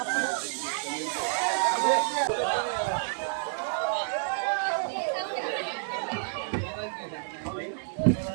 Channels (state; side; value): silent; left; digital silence